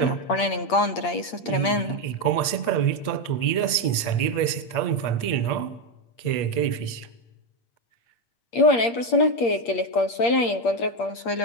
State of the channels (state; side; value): late; right; 8.6 ms